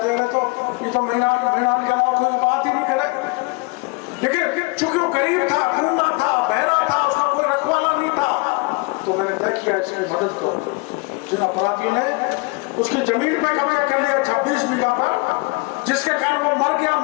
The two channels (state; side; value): quieter; right; 27.1 dB